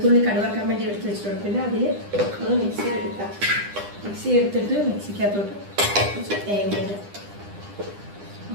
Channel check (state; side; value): late; left; 9.9 ms